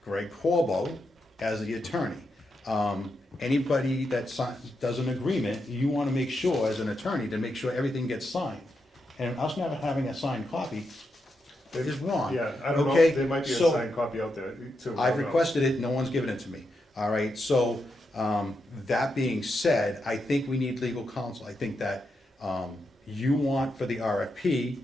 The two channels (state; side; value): normal; both; correlation 0.84